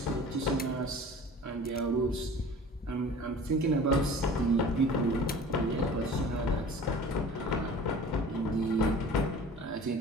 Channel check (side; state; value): both; normal; correlation 0.42